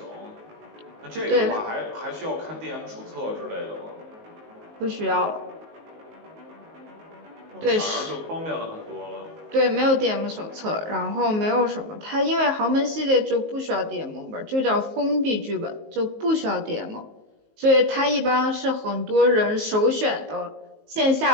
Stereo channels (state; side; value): late; left; 19 ms